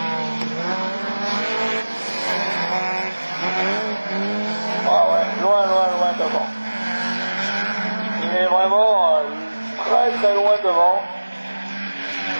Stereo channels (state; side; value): inverted; both; correlation -1.00